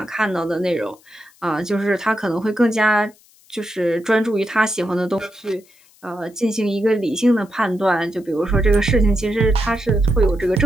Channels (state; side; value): noise; left; hiss, 29 dB below the sound